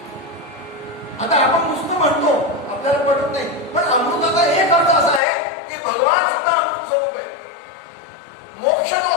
आता आपण नुसतं म्हणतो आपल्याला पटत नाही. पण अमृताचा एक अर्थ असा आहे की भगवान सुद्धा अमृत स्वरूप आहे. मोक्ष जो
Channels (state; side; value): drops out; right; at 5.2 s